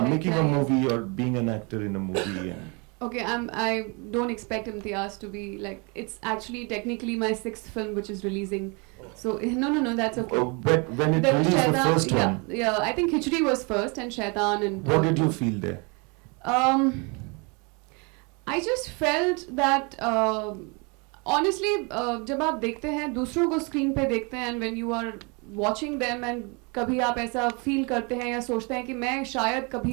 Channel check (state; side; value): quieter; left; 31.3 dB